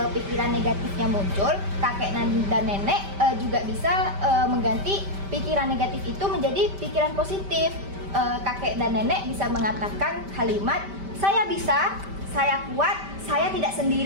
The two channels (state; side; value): late; left; 5.1 ms